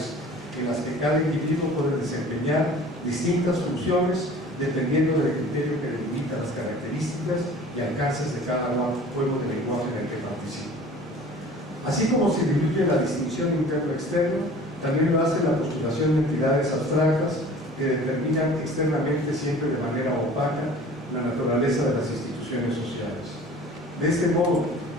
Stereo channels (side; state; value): both; normal; correlation 0.45